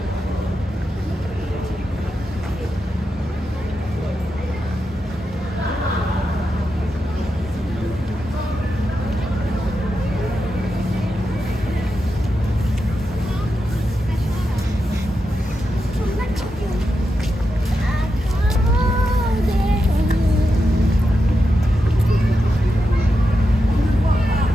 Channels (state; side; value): normal; both; correlation 0.87